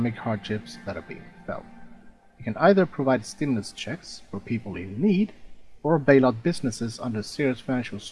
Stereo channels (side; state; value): both; identical; correlation 1.00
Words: hardships that are being felt. You can either provide stimulus checks for people in need, or bail out businesses under serious financial